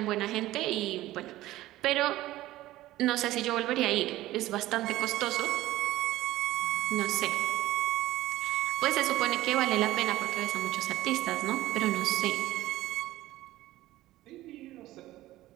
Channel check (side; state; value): left; quieter; 16.1 dB